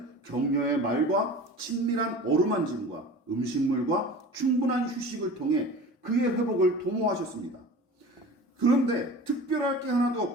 격려의 말과 친밀한 어루만짐과 음식물과 충분한 휴식을 통해 그의 회복을 도모하셨습니다. 그런데 특별할 게 하나도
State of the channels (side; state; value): both; normal; correlation 0.37